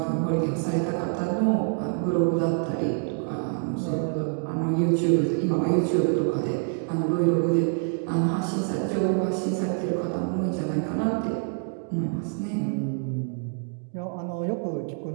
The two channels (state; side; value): silent; left; 55 dB below the other